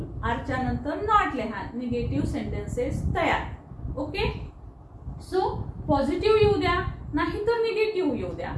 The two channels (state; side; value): identical; both; correlation 1.00